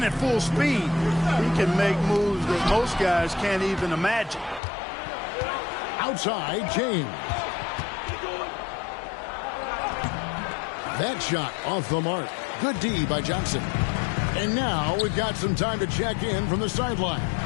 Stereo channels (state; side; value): drops out; right; at 4.6 s